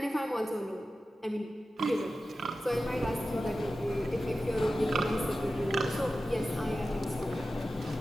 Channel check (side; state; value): both; normal; correlation 0.94